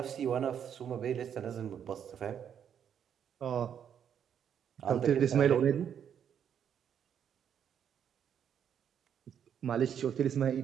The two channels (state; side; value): quieter; left; 8.6 dB